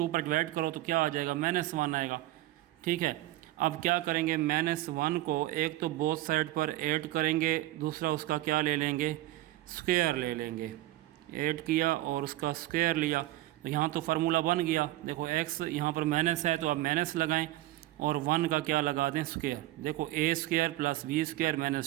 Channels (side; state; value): left; quieter; 16.4 dB